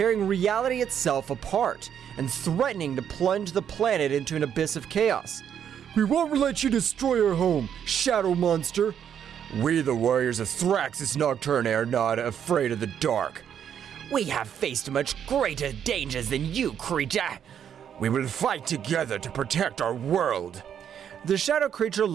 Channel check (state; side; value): quieter; left; 8.8 dB